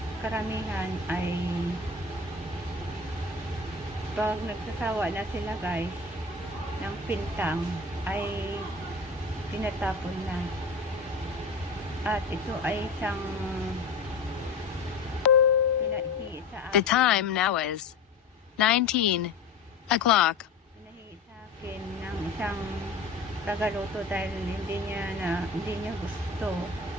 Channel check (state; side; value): quieter; right; 3.9 dB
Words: ay pag nagsasawa na sila guys ng pintang ay tinatapon na. At ito ay isang pinahi sa akin. The time now is 19 o'clock. Pinahi sa akin ng isang tagaluto dahil hindi niya gusto.